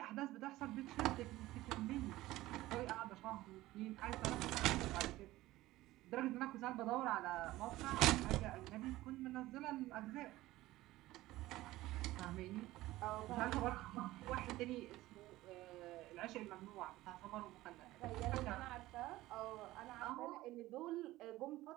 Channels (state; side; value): quieter; left; 17.1 dB